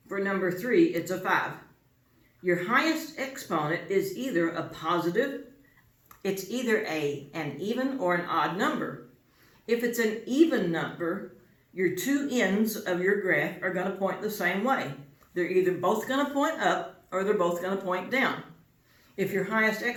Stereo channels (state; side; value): identical; both; correlation 1.00